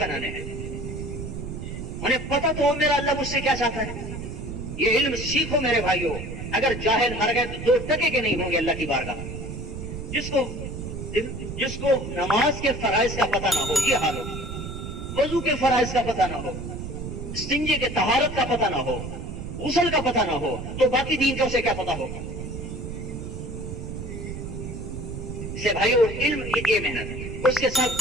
ہیں. انہیں پتہ تو ہو میرا اللہ مجھ سے کیا چاہتا ہے. یہ علم سیکھو میرے بھائیوں. اگر جاہل مر گئے تو 2 ٹکے کے نہیں ہوں گے اللہ کی بارگاہ. جس کو نماز کے فرائض کا پتہ نہ ہو، یہ حال ہو، وضو کے فرائض کا پتہ نہ ہو، استنجے کے طہارت کا پتہ نہ ہو، غسل کا پتہ نہ ہو، تو باقی دین کا اسے کیا پتہ ہوگا. سے بھائیو علم یہ محنت ہے، اس کے ساتھ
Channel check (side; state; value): right; noise; rumble, 7 dB below the sound